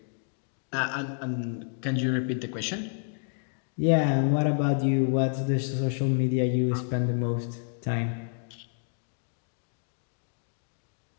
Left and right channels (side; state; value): right; silent; digital silence